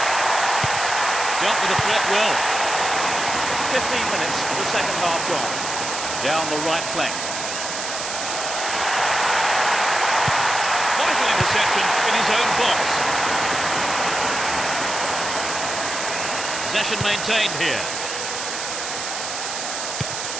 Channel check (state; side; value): noise; right; hiss, 5 dB below the sound